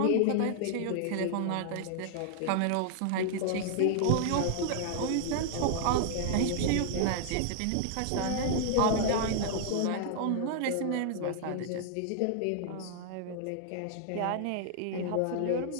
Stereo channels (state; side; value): different; both; correlation 0.00